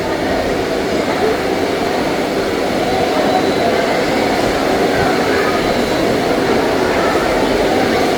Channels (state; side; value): identical; both; correlation 1.00